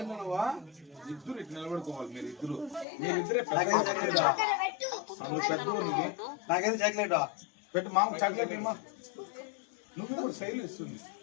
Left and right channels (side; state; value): right; drops out; at 2.9 s